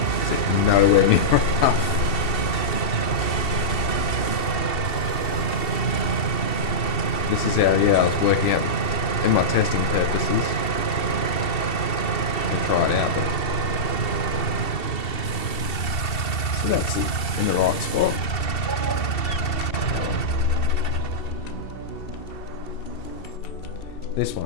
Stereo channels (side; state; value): right; late; 2.7 ms